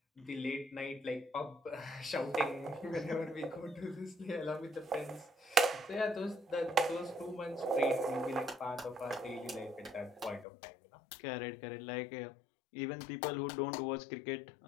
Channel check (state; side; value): drops out; right; at 10.5 s